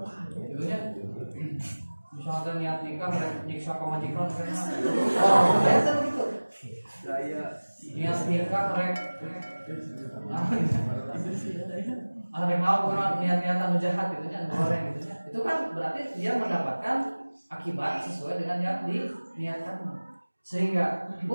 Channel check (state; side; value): inverted; both; correlation -1.00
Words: Jadinya misalnya niat nikah nyiksa ke majikan karena biasa begitu. Niat nikah rek ada yang mau orang niat-niatan jahat gitu nya goreng gitu nya. Itu kan berarti dia mendapatkan akibat sesuai dengan yang diniatkan. Sehingga